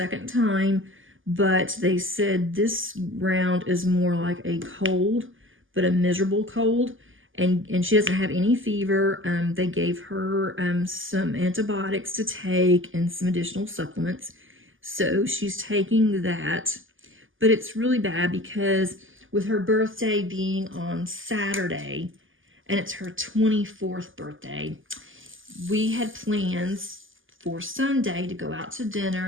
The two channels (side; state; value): left; late; 0.58 ms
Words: time, but they said this round is more like a cold, but a miserable cold. And she doesn't have any fever. They gave her some antibiotics to take and some additional supplements. So she's taking that. But it's really bad because with her birthday being on Saturday, and it's her 24th birthday, we had plans for Sunday to go out to dinner